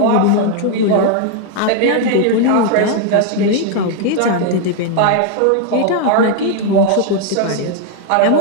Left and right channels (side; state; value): both; different; correlation 0.00